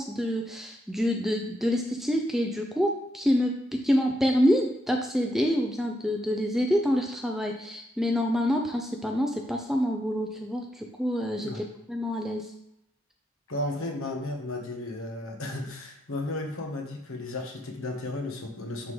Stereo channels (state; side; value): normal; both; correlation 0.80